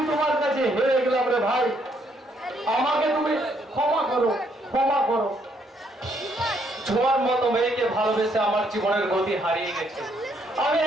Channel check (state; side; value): normal; both; correlation 0.71